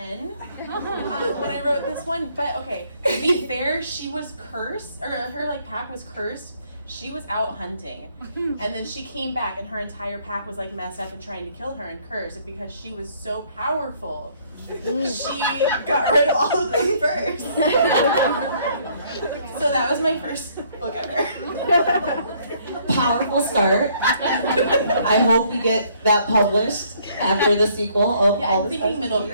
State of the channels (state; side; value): inverted; both; correlation -0.64